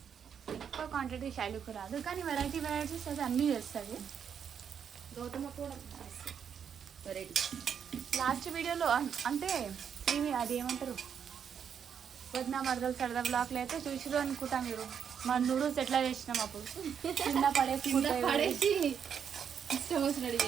క్వాంటిటీ శైలుకు రాదు, కానీ వెరైటీస్ అయితే అన్నీ చేస్తుంది. గౌతమ కూడా వెరైటీ. లాస్ట్ వీడియోలో అంటే ఇవి అది ఏమంటారు, వదిన మరదలు సరదా బ్లాక్లో అయితే చూసిరు అనుకుంటా మీరు. మా నూడిల్స్ ఎట్లా చేసినాం అప్పుడు కింద పడేసి ఇష్టం వచ్చినట్టు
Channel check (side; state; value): left; quieter; 7.7 dB